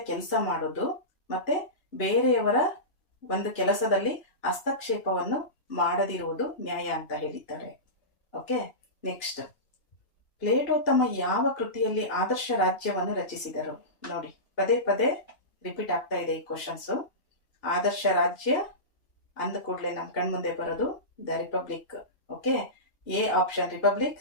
ಕೆಲಸ ಮಾಡೋದು ಮತ್ತೆ ಬೇರೆಯವರ ಒಂದು ಕೆಲಸದಲ್ಲಿ ಹಸ್ತಕ್ಷೇಪವನ್ನು ಮಾಡದಿರುವುದು ನ್ಯಾಯ ಅಂತ ಹೇಳಿದ್ದಾರೆ. ಓಕೆ, ನೆಕ್ಸ್ಟ್, ಪ್ಲೇಟೋ ತಮ್ಮ ಯಾವ ಕೃತಿಯಲ್ಲಿ ಆದರ್ಶ ರಾಜ್ಯವನ್ನು ರಚಿಸಿದರು? ನೋಡಿ, ಪದೇ ಪದೇ ರಿಪೀಟ್ ಆಗ್ತಾ ಇದೆ ಈ ಕ್ವಶನ್ಸು. ಆದರ್ಶ ರಾಜ್ಯ ಅಂದ ಕೂಡಲೇ ನಮ್ಮ ಕಣ್ಮುಂದೆ ಬರೋದು the republic. Okay, A option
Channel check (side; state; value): right; late; 2.9 ms